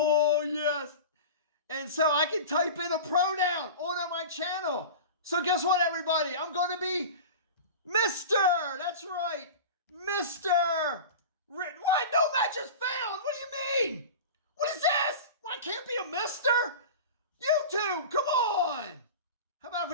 yes. And so I can type in a pronoun on my channel. So guess what, everybody? I'm going to be Mr. That's right. Mr. What? No match is found. What do you mean? What is this? Well, I can't be a Mr. YouTube, come on. How about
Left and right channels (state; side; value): inverted; both; correlation -0.32